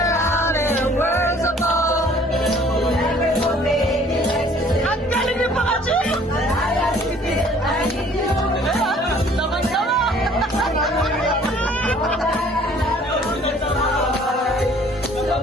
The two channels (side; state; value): both; normal; correlation 0.55